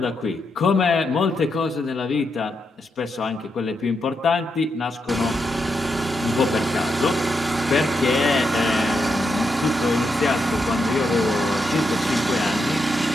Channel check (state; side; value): normal; both; correlation 0.83